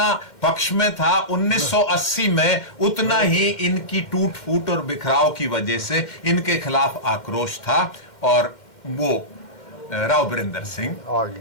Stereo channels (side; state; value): right; late; 2.1 ms